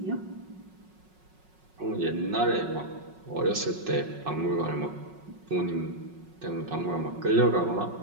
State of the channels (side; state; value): left; late; 5.4 ms